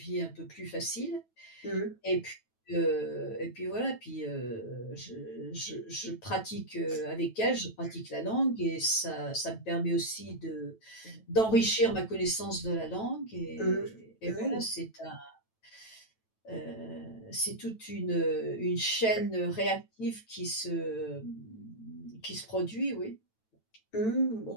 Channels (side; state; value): right; late; 9.1 ms